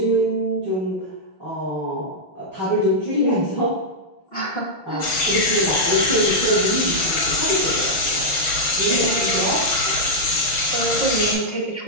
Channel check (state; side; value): late; right; 6.2 ms